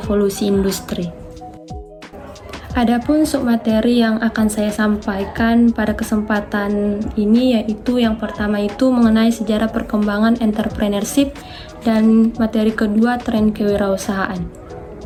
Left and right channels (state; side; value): identical; both; correlation 1.00